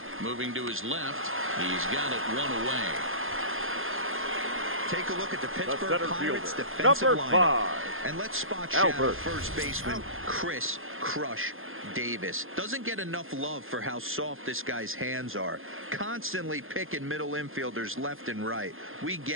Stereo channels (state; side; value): late; left; 0.60 ms